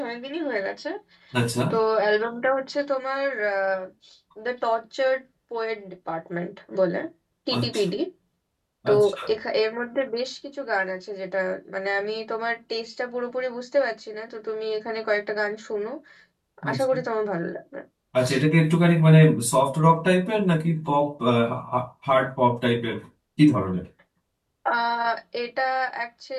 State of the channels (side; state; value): both; identical; correlation 1.00